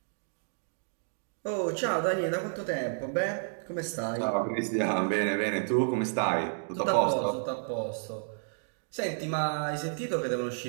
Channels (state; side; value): silent; left; digital silence